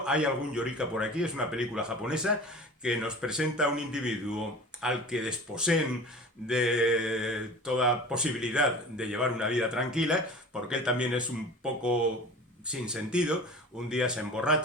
Hay algún Yorika por aquí, es una película japonesa que nos presenta a un individuo al que desposeen de toda posibilidad de llevar una vida tranquila, porque él también es un poco sin sentido. Un día se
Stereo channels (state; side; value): normal; both; correlation 0.38